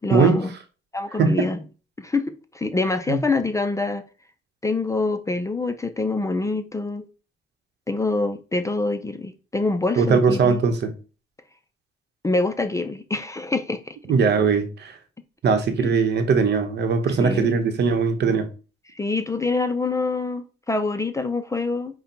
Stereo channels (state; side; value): normal; both; correlation 0.55